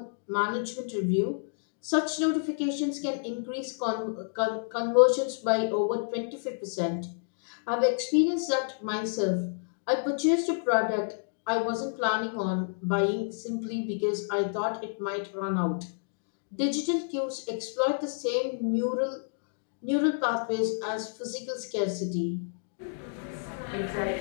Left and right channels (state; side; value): silent; right; digital silence